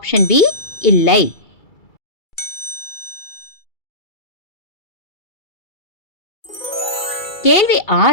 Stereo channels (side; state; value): right; late; 2.3 ms